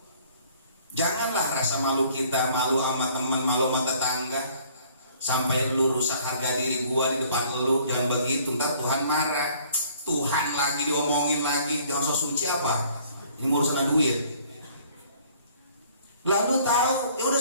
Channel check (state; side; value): inverted; both; correlation -0.57